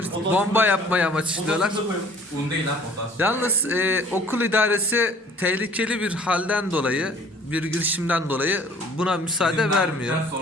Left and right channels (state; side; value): normal; both; correlation 0.53